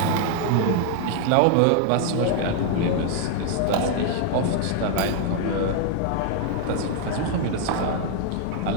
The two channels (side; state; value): both; different; correlation 0.00